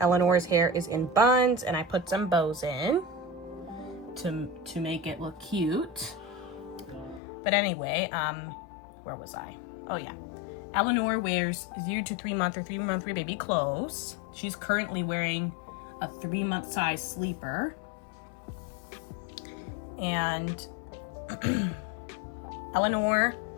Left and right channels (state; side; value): drops out; right; at 7.2 s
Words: hair is in buns and I put some bows in to make it look cute. But anyway, where was I? Oh yeah. Eleanor wears 0 to 3 month or 3 month baby clothes. She's currently wearing a 3-month size sleeper. And Eleanor